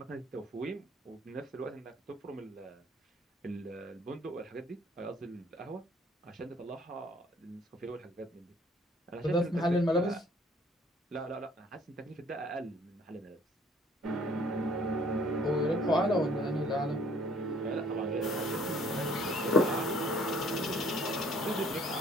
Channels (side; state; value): both; normal; correlation 0.58